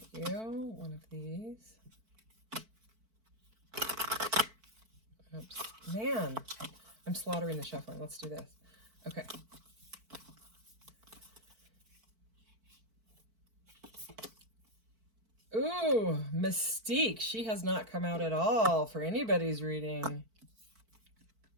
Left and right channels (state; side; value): late; left; 4.5 ms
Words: you one of these. Oops. Man, I'm slaughtering the shuffling. Let's do this. Okay. Ooh, Mystique. She has not come out at all for anybody's reading.